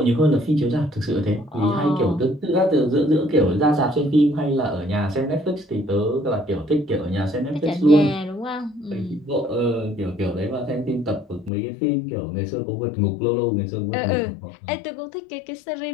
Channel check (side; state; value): right; drops out; at 11.5 s